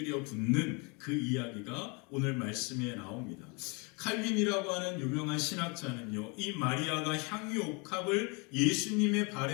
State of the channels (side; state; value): right; quieter; 31.1 dB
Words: 붓는 그 이야기가 오늘 말씀에 나옵니다. 칼빈이라고 하는 유명한 신학자는요, 이 마리아가 향유옥합을 예수님의